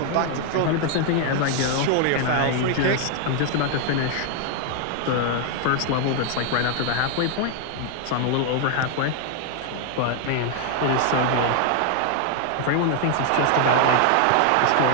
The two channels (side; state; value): both; different; correlation 0.00